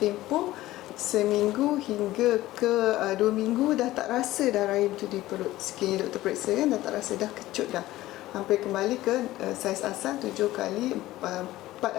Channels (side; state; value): right; quieter; 16.3 dB